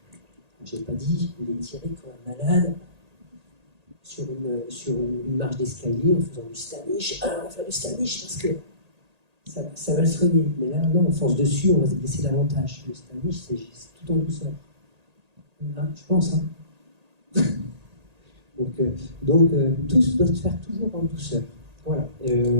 Je n'ai pas dit, il est tiré comme un malade sur une marche d'escalier en faisant du Stanish. Ah, on va faire du Stanish parce que ça va le soigner. Mais là, non, on force dessus, on va se blesser davantage. Le Stanish, c'est tout en douceur. Là, je pense. Hein. Donc tout doit se faire toujours en douceur. Voilà.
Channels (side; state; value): left; late; 1.8 ms